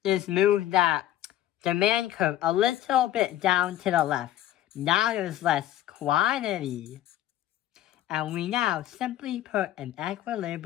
is move that demand curve a little bit down to the left. Now there's less quantity. And we now simply put an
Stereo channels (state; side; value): quieter; right; 12.9 dB